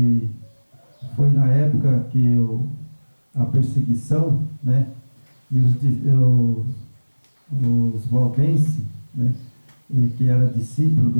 foi na época que a perseguição, né, e os valdenses, né, que era discípulo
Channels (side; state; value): both; inverted; correlation -1.00